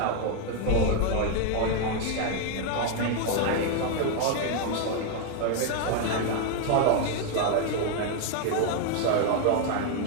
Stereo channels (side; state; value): both; different; correlation 0.01